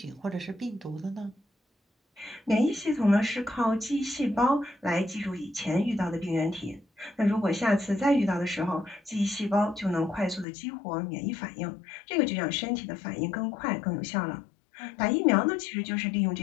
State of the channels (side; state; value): right; drops out; at 10.5 s